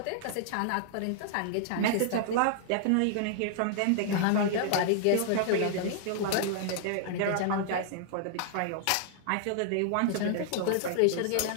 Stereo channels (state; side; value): different; both; correlation -0.01